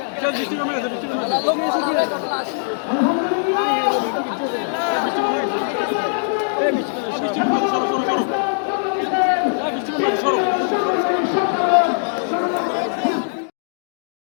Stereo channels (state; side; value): silent; right; digital silence